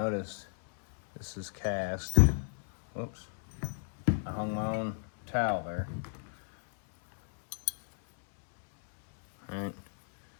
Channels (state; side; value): silent; right; 56 dB below the other